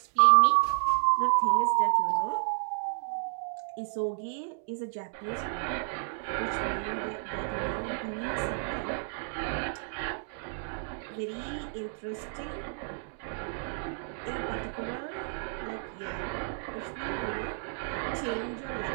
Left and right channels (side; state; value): left; silent; digital silence